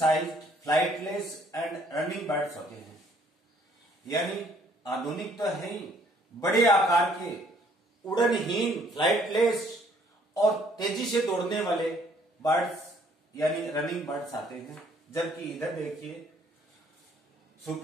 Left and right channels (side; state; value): both; normal; correlation 0.62